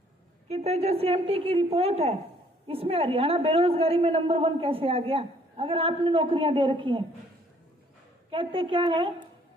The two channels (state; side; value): normal; both; correlation 0.62